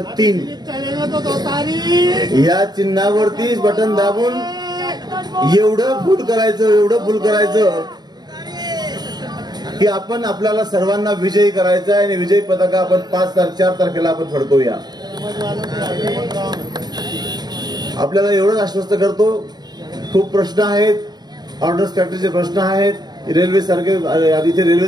3 या चिन्हावरती बटन दाबून एवढं फुल करायचं की आपण आपल्याला सर्वांना विजयी करायचा आहे. आणि विजयी पताका आपण 4 तारखेला आपण फडकवूया. आपल्याला एवढंच आश्वस्त करतो. खूप प्रश्न आहेत, ऑर्डर्स फॅक्टरीचे प्रश्न आहेत, रेल्वे सारखे, इथे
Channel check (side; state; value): left; late; 0.20 ms